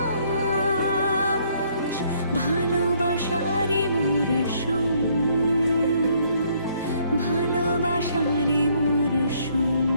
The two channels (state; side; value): inverted; both; correlation -0.66